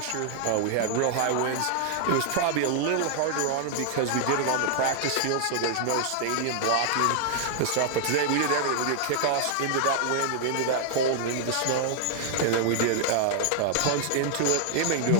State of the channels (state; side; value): different; both; correlation -0.01